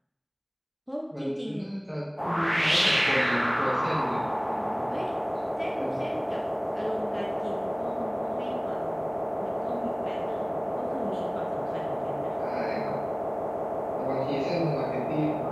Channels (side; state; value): both; identical; correlation 1.00